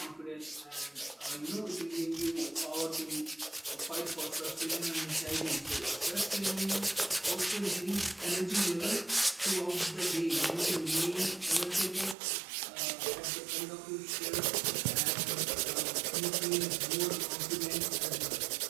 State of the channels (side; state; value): left; drops out; at 12.2 s